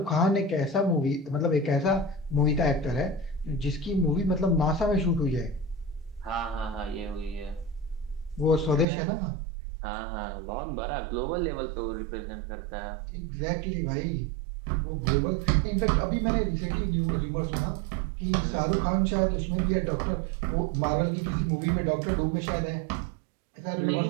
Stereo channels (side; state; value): left; drops out; at 8.8 s